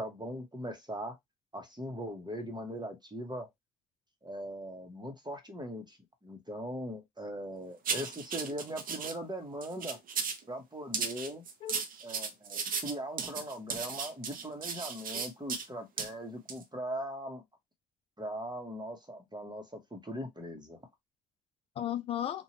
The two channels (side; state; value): both; normal; correlation 0.33